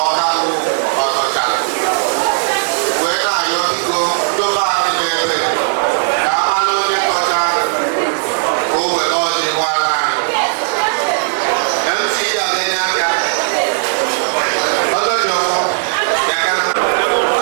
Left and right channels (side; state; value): left; silent; digital silence